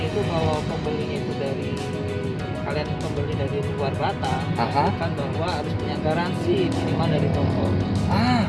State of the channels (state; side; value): identical; both; correlation 1.00